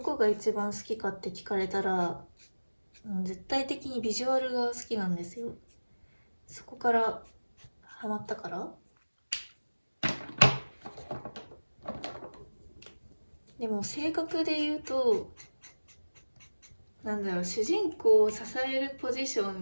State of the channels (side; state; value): both; inverted; correlation -1.00